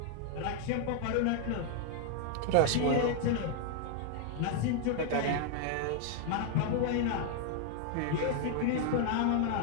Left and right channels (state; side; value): different; both; correlation 0.00